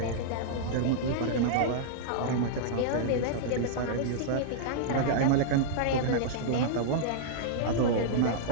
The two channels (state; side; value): different; both; correlation -0.02